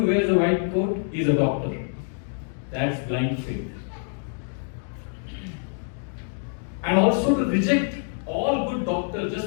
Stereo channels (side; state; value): right; silent; 61 dB below the other